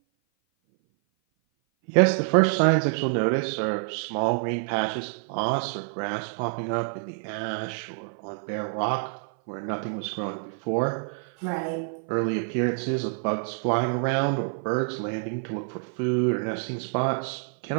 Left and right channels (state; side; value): silent; left; 56 dB below the other